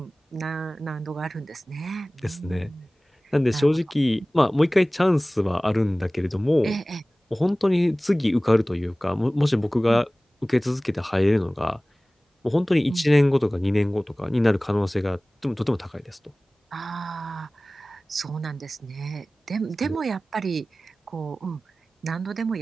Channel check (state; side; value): normal; both; correlation 0.98